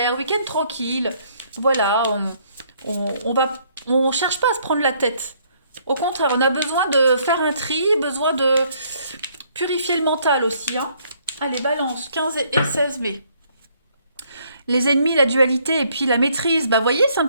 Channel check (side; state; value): both; inverted; correlation -0.66